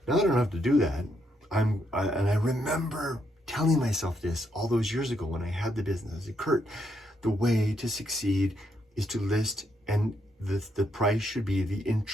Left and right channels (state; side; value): normal; both; correlation 0.77